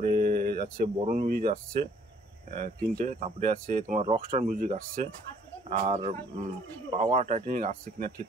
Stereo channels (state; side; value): normal; both; correlation 0.61